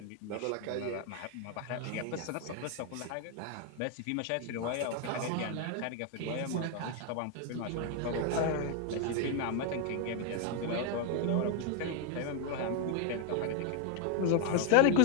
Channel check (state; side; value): different; both; correlation 0.00